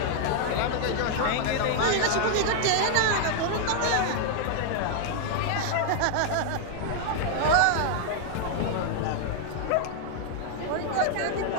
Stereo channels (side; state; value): both; different; correlation 0.00